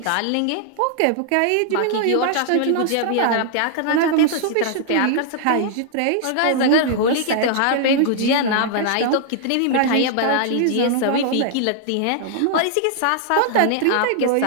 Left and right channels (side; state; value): both; different; correlation -0.01